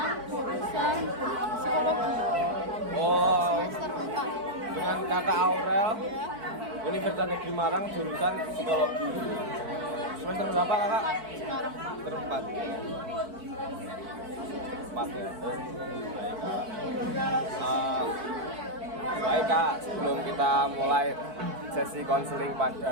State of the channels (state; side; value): late; left; 4.5 ms